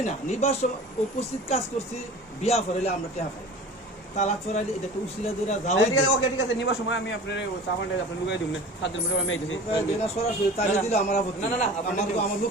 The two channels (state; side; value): normal; both; correlation 0.39